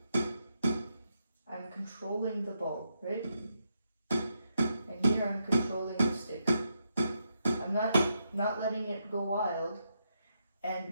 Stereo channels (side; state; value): both; inverted; correlation -0.82